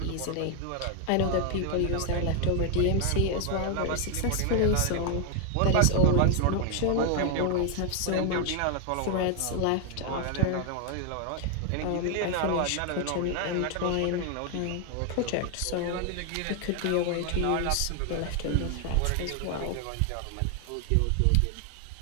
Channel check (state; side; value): different; both; correlation 0.00